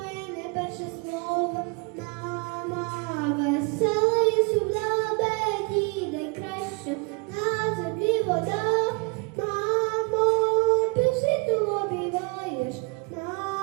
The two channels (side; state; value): left; quieter; 31.6 dB